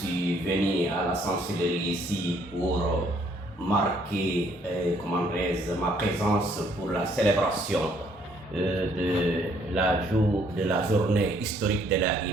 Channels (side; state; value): both; normal; correlation 0.65